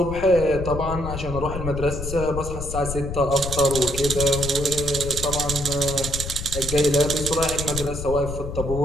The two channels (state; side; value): noise; left; rumble, 6 dB below the sound